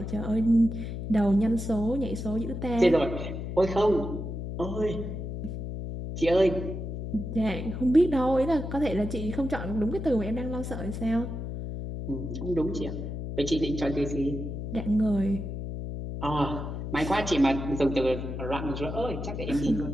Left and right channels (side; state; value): left; noise; hum, 6 dB below the sound